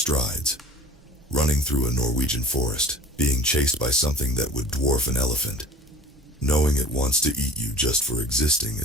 Running through a Norwegian forest, being chased by something that would dwarf an elephant. Knowing it wants to eat you just for existing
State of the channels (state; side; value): normal; both; correlation 0.42